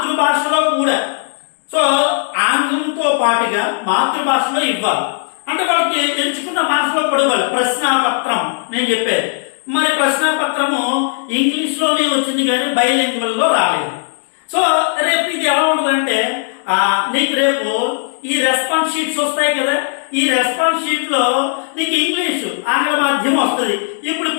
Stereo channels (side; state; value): right; silent; digital silence